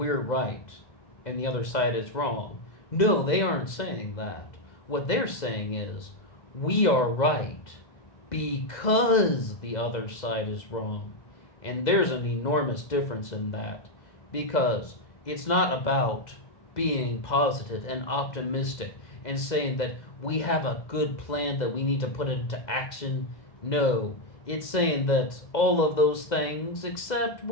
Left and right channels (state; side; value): late; right; 2.0 ms